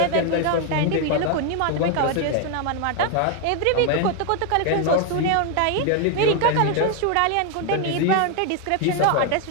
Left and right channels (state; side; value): different; both; correlation 0.01